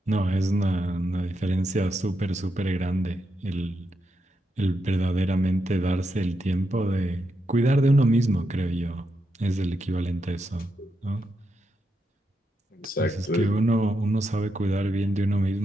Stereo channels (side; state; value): both; normal; correlation 0.83